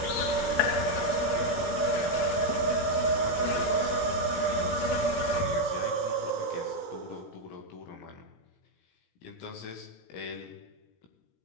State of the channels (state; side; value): late; right; 17 ms